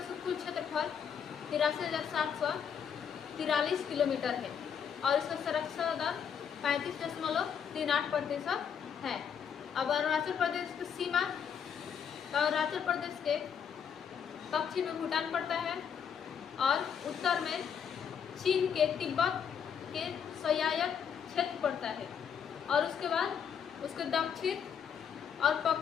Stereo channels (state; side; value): quieter; right; 7.6 dB